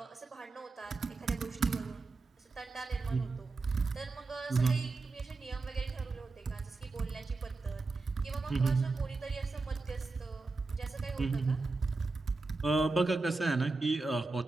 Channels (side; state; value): left; quieter; 3.7 dB